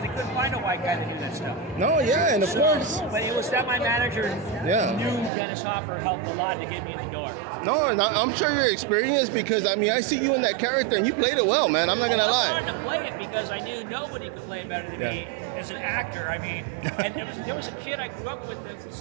They couldn't find a white guy that knew that stuff. No, yeah, and of course. But it was that my manager knew Dennis Hopper helped a lot to get me in the door. No, and I'm sure you're experienced because, I mean, I see you in that character and you played it well, man. I'm not going to lie. I wanted to play it because I knew nobody could play better than me as an actor. I mean, and there was a kid I grew up with that's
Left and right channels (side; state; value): left; drops out; at 5.3 s